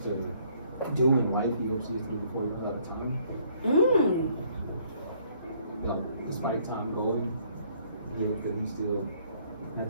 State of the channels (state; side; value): inverted; both; correlation -0.64